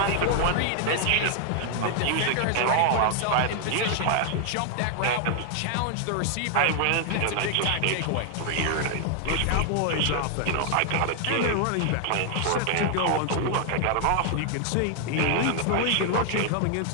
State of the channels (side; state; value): both; different; correlation 0.00